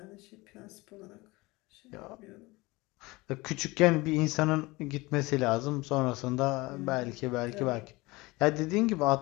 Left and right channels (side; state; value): right; quieter; 22.5 dB